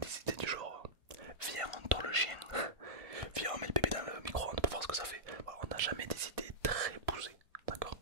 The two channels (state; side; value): late; left; 1.5 ms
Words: idées du genre viens on tord le chien, viens on met le bébé dans le micro-ondes pour voir ce que ça fait. Voilà, on n'a jamais des idées très poussées. D'accord,